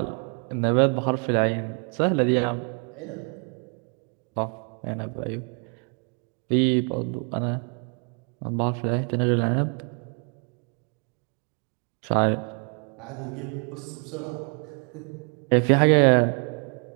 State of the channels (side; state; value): left; quieter; 39.9 dB